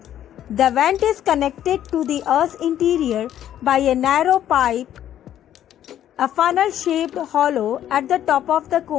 The vent is connected to the Earth's interior by a narrow pipe. A funnel-shaped hollow at the top of the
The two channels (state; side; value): quieter; right; 11.2 dB